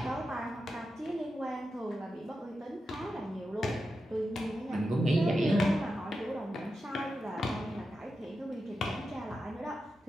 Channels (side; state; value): both; normal; correlation 0.90